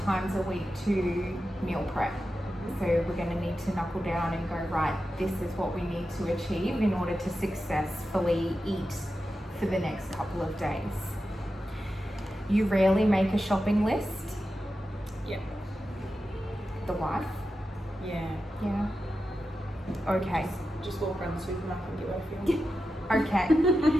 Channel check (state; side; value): normal; both; correlation 0.91